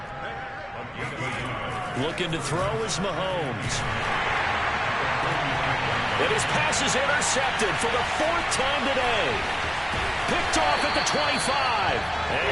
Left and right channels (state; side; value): identical; both; correlation 1.00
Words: Looking to throw is Mahomes. And his pass is intercepted for the 4th time today. Picked off at the 25.